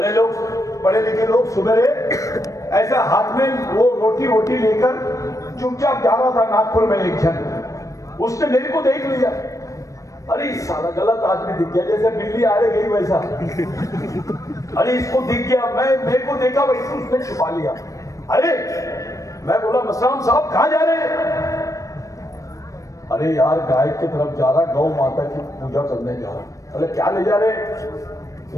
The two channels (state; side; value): late; right; 0.16 ms